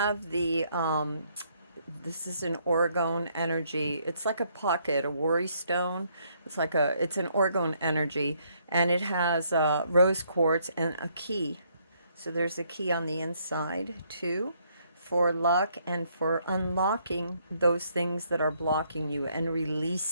the this is an orgone energy. It's like a pocket, a worry stone. It's an orgone energy, and it has rose quartz and a key. So there's a key on the inside too, for luck and for unlocking those things that are blocking you and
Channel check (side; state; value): both; inverted; correlation -0.70